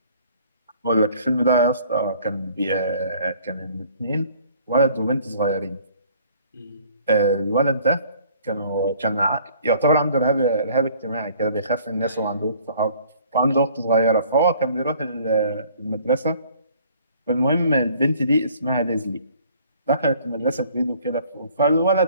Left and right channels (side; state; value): both; inverted; correlation -0.57